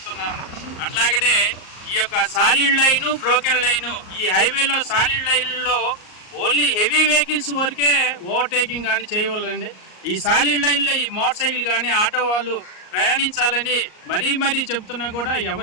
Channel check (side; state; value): right; late; 38 ms